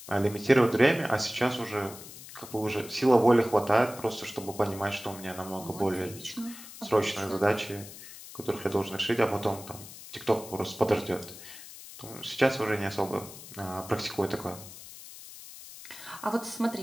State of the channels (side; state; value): left; noise; hiss, 15 dB below the sound